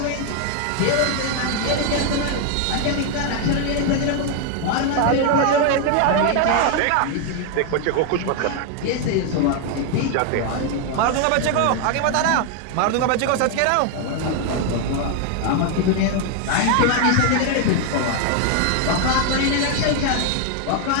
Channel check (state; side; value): different; both; correlation 0.00